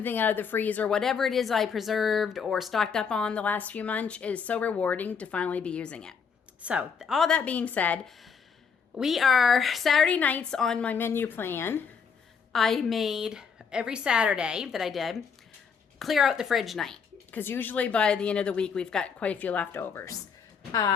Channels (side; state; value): right; quieter; 6.2 dB